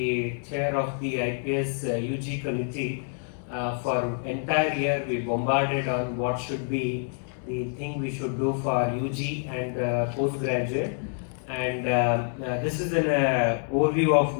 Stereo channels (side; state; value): right; silent; 60 dB below the other